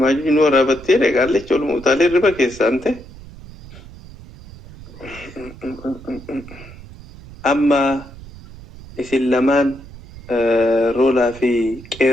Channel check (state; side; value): noise; right; rumble, 18 dB below the sound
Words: maajuji nu waraabattee dhaqaallecha ol muutaalee riba keessaan ta'e amma isin lamaan roolaa fi